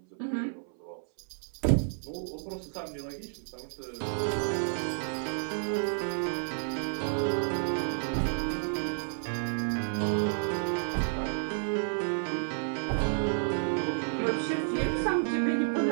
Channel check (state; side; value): silent; left; 57 dB below the other